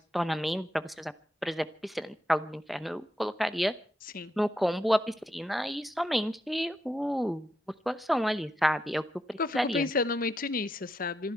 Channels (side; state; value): both; normal; correlation 0.83